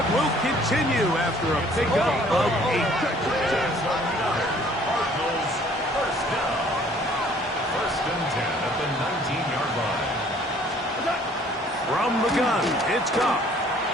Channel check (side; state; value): both; normal; correlation 0.57